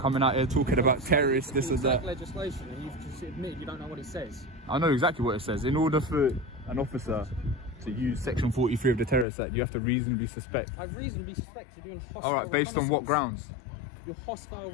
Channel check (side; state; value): right; drops out; at 9.2 s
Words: out here talking about terrorists, this and that. Legislation, and you've just admitted you don't know what it says. I know exactly what it says. In order for an officer to use Section 43 of the Terrorist Act, you have to reasonably suspect. I reasonably suspect you're doing hostile. All right, based on what grounds? Your hostile